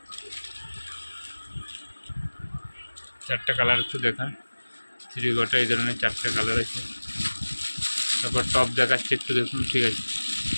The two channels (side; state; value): both; inverted; correlation -1.00